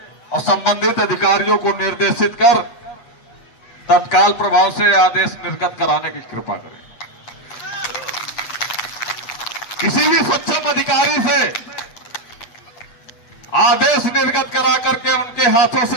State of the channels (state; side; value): late; right; 8.7 ms